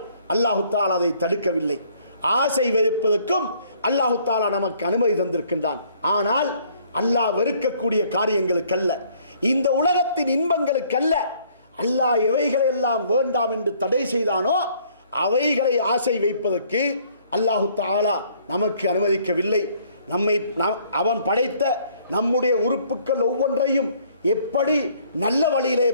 அல்லாஹு தஆலா அதை தடுக்கவில்லை. ஆசை வைப்பதற்கும் அல்லாஹு தஆலா நமக்கு அனுமதி தந்திருக்கின்றான். ஆனால் அல்லாஹ் வெறுக்கக்கூடிய காரியங்களுக்கல்ல, இந்த உலகத்தின் இன்பங்களுக்கல்ல. அல்லாஹ் எவைகளை எல்லாம் வேண்டாம் என்று தடை செய்தானோ அவைகளை ஆசை வைப்பதற்கு அல்லாஹு தஆலா நமக்கு அனுமதிக்கவில்லை. அவன் படைத்த நம்முடைய உறுப்புக்கள் ஒவ்வொன்றையும் எப்படி நல்ல வழியிலே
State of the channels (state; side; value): inverted; both; correlation -0.62